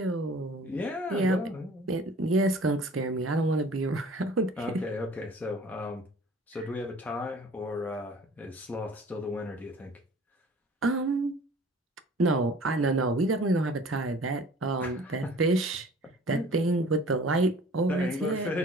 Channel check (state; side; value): normal; both; correlation 0.48